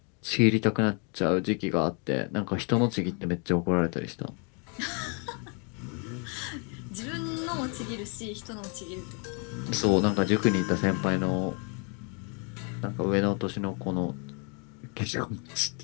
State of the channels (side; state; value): right; quieter; 36.5 dB